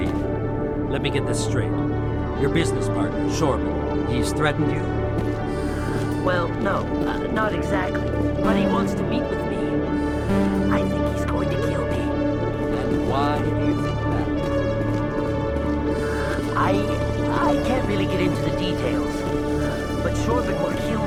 Let me get this straight. Your business partner, Shorban, he's threatened you? Well, no, not exactly. But he wants to meet with me. I think he's going to kill me. And why do you think that? I can't really get into the details. But Shorban will kill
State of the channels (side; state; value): both; identical; correlation 1.00